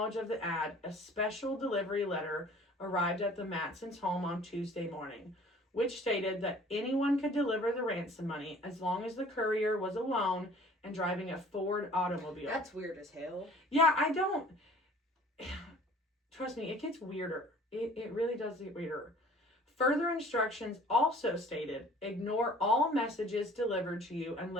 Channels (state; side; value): normal; both; correlation 0.50